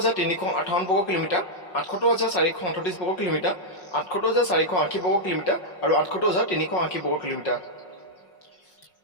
বৰ্গ কিলোমিটাৰ, ৭৮,৪৩৮ বৰ্গ কিলোমিটাৰ, ৭৮,৪৮০ বৰ্গ কিলোমিটাৰ আৰু ৭৮,৩৮০ বৰ্গ কিলোমিটাৰ।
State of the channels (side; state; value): right; late; 5.5 ms